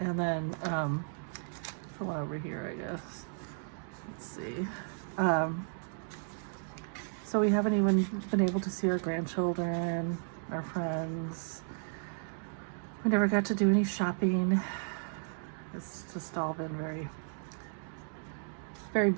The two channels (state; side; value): silent; left; 55 dB below the other